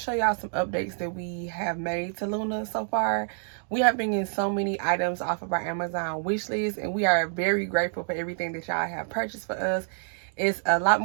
y'all some updates that we have made to Luna so far. We have been getting so many items off of our Amazon wish list. And we are very grateful for everything that y'all have purchased for us. It's a lot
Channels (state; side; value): silent; left; digital silence